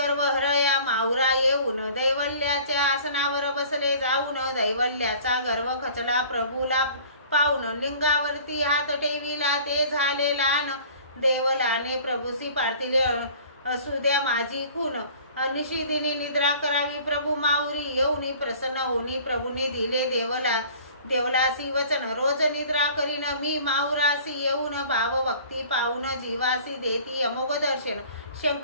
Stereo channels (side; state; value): both; inverted; correlation -0.47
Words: हरया माहुरा येऊन दैवल्याच्या आसनावर बसले जाऊन दैवल्याचा गर्व खचला प्रभूला पाहून लिंगावरती हात ठेविला ते झाले लहान देवलाने प्रभूसी पार्थिले असू द्या माझी खून निशिदिनी निद्रा करावी प्रभू माऊरी येऊनी प्रसन्न होनी प्रभूने दिले देवलासी वचन रोज निद्रा करीन मी माऊरासी येऊन भाव भक्ती पाहून जीवासी देती अमोघ दर्शन